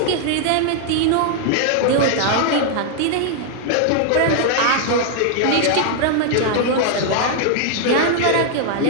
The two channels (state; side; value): different; both; correlation 0.00